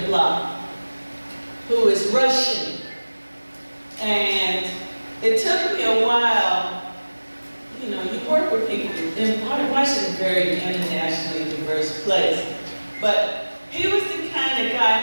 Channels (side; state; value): both; inverted; correlation -1.00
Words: the block who is Russian. And it took me a while, you know, you work with people, and Washington is a very internationally diverse place, but he was the kind of